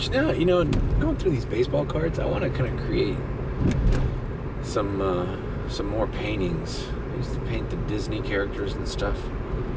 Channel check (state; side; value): identical; both; correlation 1.00